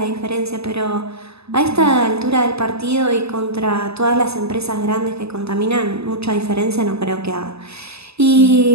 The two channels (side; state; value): left; late; 0.79 ms